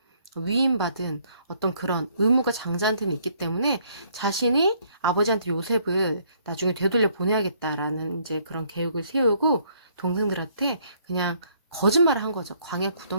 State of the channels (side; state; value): both; inverted; correlation -0.66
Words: 위임받은 어떤 그런 의무가 장자한테는 있기 때문에 자신이 아버지한테 요셉을 나중에 되돌려 보내야겠다라는 이제 그런 계획을 세우고 동생들한테 그냥 거짓말을 한 거죠. 광야